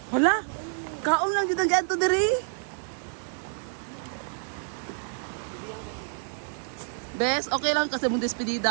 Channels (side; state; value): left; silent; 57 dB below the other